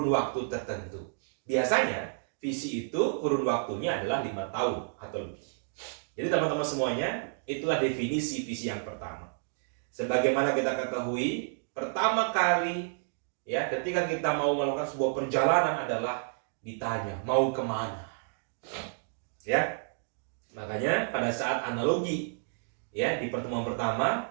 waktu tertentu. Biasanya visi itu kurun waktunya adalah 5 tahun atau lebih. Jadi teman-teman semuanya, itulah definisi visi yang pertama. Sebagaimana kita ketahui, pertama kali, ya, ketika kita mau melakukan sebuah perjalanan adalah ditanya mau kemana, ya. Makanya pada saat analogi, ya, di pertemuan pertama,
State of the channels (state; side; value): silent; left; digital silence